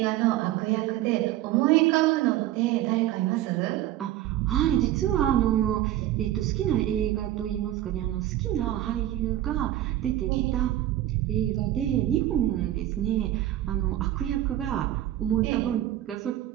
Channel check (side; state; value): left; quieter; 13.6 dB